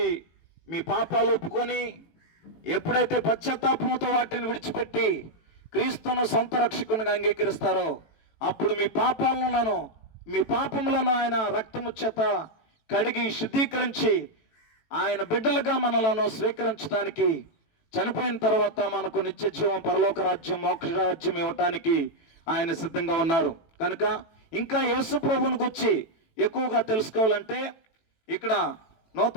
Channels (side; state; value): right; late; 18 ms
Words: మీ పాపాలు ఒప్పుకొని ఎప్పుడైతే పశ్చాత్తాపంతో వాటిని విడిచిపెట్టి క్రీస్తును సొంత రక్షకునిగా అంగీకరిస్తారో అప్పుడు మీ పాపములను ఆయన రక్తము చేత కడిగి శుద్ధీకరించి ఆయన బిడ్డలుగా మనలను స్వీకరించడానికి, చనిపోయిన తర్వాత మనకు నిత్య జీవం, పరలోక రాజ్యం, మోక్ష రాజ్యం ఇవ్వటానికి ఆయన సిద్ధంగా ఉన్నారు. కనుక ఇంకా యేసు ప్రభువుని గురించి ఎక్కువగా తెలుసుకోవాలంటే ఇక్కడ